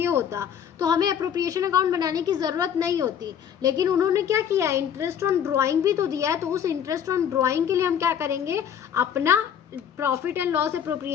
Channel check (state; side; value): quieter; right; 8.7 dB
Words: होता तो हमें अप्रोप्रिएशन अकाउंट बनाने की ज़रूरत नहीं होती, लेकिन उन्होंने क्या किया, इंटरेस्ट ऑन ड्राइंग भी तो दिया है, तो उस इंटरेस्ट ऑन ड्राइंग के लिए हम क्या करेंगे, अपना profit and loss